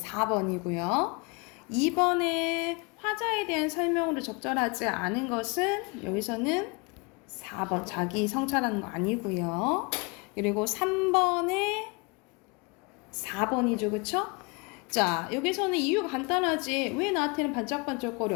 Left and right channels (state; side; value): quieter; right; 30.1 dB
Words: 2번에 화자에 대한 설명으로 적절하지 않은 것은 여기서는 4번 자기 성찰하는 거 아니고요. 그리고 3번에 4번이죠, 그쵸? 자, 여기서는 이유가 간단하지. 왜 나한테는